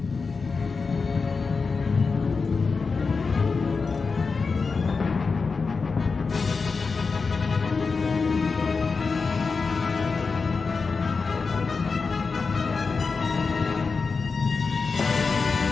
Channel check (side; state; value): right; quieter; 4.7 dB